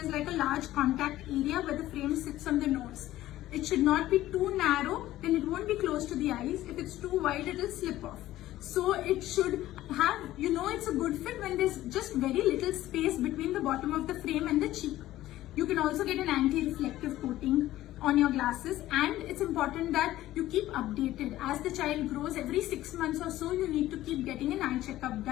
like a large contact area where the frame sits on the nose. It should not be too narrow, then it won't be close to the eyes. If it's too wide, it will slip off. So it should have, it's a good fit when there's just very little space between the bottom of the frame and the cheek. You can also get an anti-reflective coating on your glasses, and it's important that you keep updated. As the child grows, every 6 months or so, you need to keep getting an eye checkup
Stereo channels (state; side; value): quieter; right; 14.9 dB